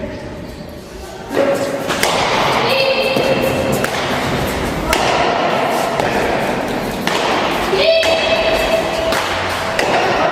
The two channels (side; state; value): both; identical; correlation 1.00